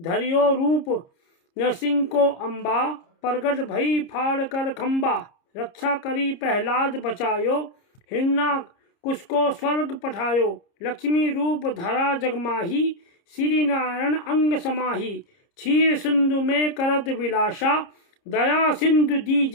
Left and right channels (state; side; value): late; right; 30 ms